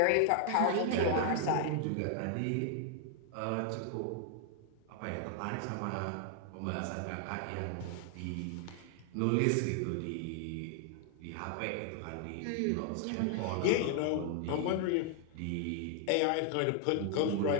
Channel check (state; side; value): different; both; correlation 0.00